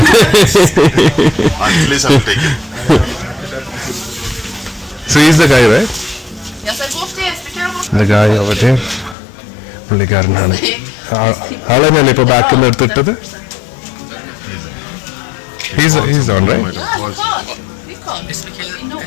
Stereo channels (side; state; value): right; drops out; at 9.2 s